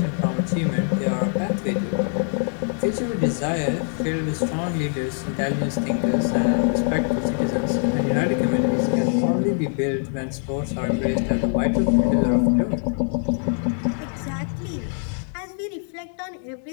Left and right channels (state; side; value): silent; right; 56 dB below the other